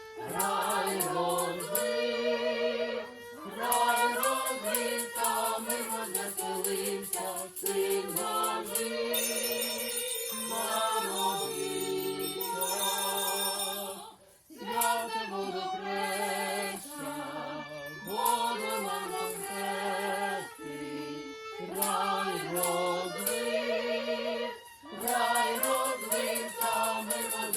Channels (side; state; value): both; identical; correlation 1.00